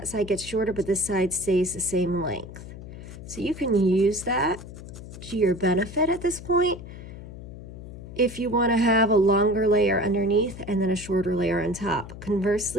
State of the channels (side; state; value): left; noise; hum, 13 dB below the sound